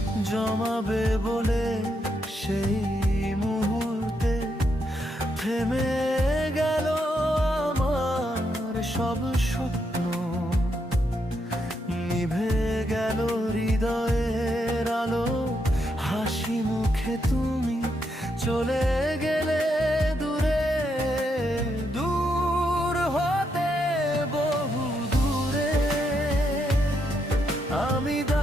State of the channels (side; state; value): both; normal; correlation 0.79